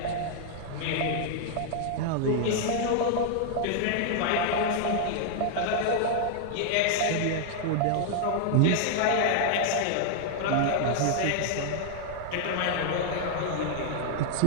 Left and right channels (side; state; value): both; different; correlation -0.01